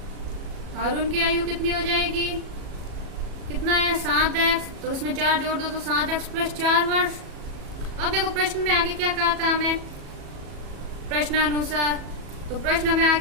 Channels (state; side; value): late; left; 37 ms